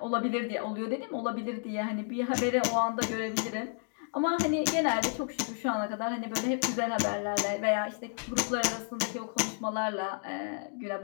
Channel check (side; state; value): right; silent; 57 dB below the other